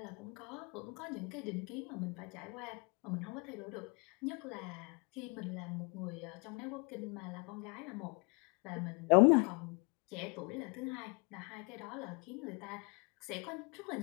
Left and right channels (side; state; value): right; quieter; 32.3 dB